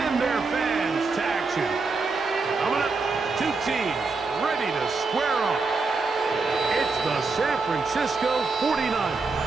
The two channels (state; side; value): quieter; left; 4.1 dB